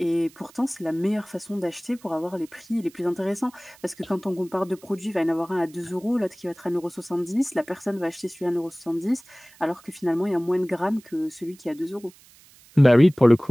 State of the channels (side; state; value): right; noise; hiss, 26 dB below the sound